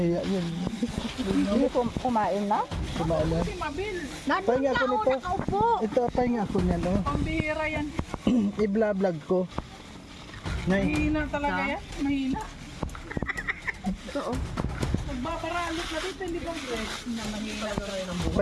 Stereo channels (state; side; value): identical; both; correlation 1.00